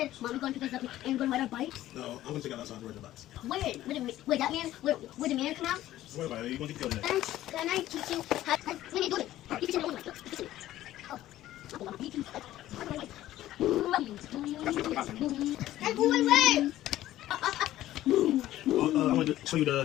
said, Mom, we're going to pick us up and we're going to ride our bikes? No, I'm going to take out outside to ride the bikes. Wait, that man, where the man come out? Don't worry about it. You're going to get killed in Can I teach you how, when you do it? You can tell me what you do. Oh. I'm going away! I'm going to show you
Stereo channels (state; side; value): quieter; right; 14.2 dB